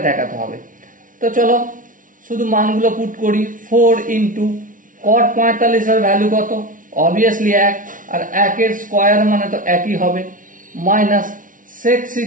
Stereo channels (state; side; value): late; left; 0.38 ms